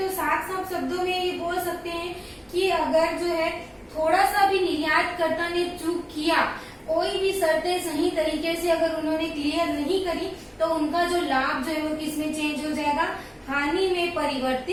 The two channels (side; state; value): both; identical; correlation 1.00